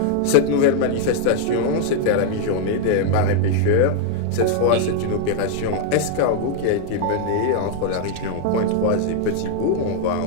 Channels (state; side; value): different; both; correlation -0.01